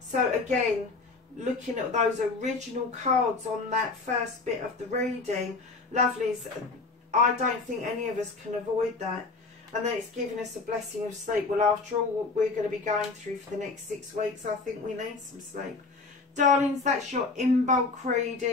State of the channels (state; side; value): quieter; right; 3.9 dB